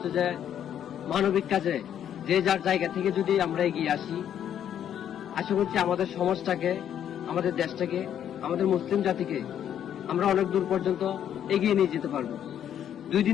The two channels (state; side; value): quieter; right; 9.8 dB